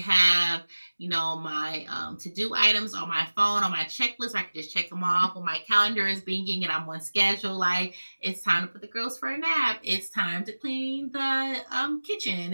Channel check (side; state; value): both; inverted; correlation -1.00